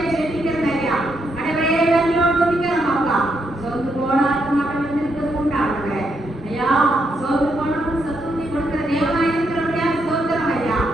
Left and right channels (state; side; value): normal; both; correlation 0.78